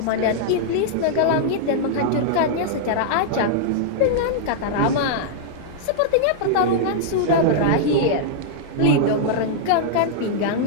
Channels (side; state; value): both; different; correlation -0.01